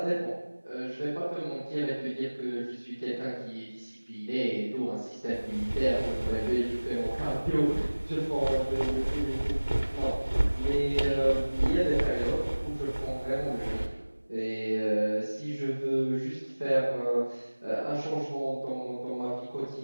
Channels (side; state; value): both; inverted; correlation -1.00